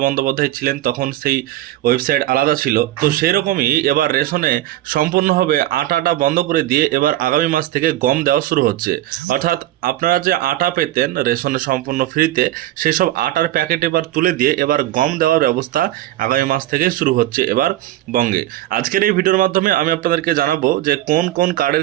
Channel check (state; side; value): quieter; left; 14.7 dB